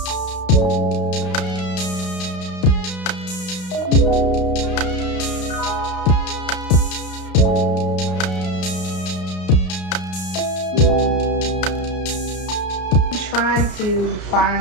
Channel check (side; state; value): right; late; 32 ms